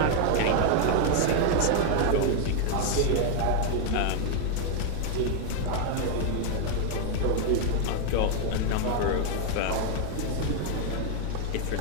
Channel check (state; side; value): different; both; correlation 0.00